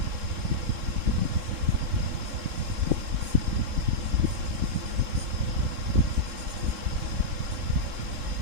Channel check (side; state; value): left; late; 3.7 ms